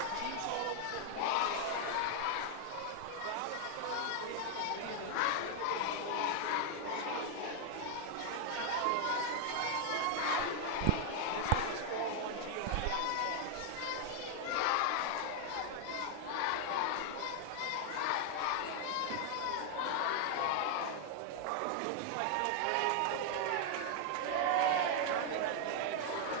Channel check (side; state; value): both; different; correlation 0.00